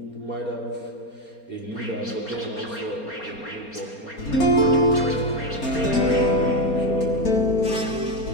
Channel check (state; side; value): late; right; 4.3 ms